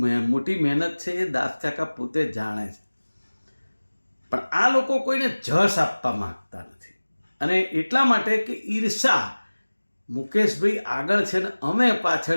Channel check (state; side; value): inverted; both; correlation -1.00